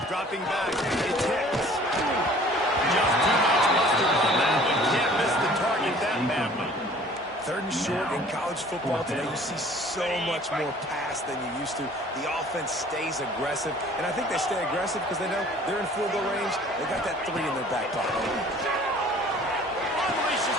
dropping back. It's hits. Just too much mustard on that one. Can't miss the target that badly. 3rd and short in college football today, you see so much more pass than you used to. The offense stays aggressive, and I think they stay aggressive because they know they're in field goal range. They got that 3 in their back pocket. Unleashes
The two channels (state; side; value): normal; both; correlation 0.51